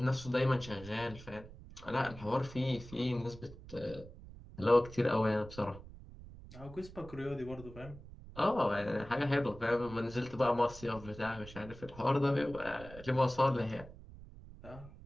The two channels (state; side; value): noise; right; rumble, 16 dB below the sound